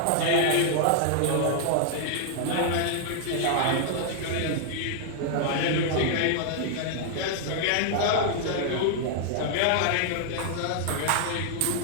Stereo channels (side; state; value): both; different; correlation 0.00